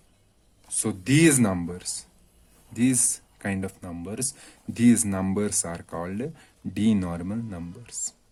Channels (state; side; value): identical; both; correlation 1.00